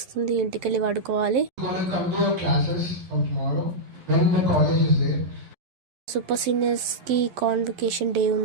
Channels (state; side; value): late; left; 11 ms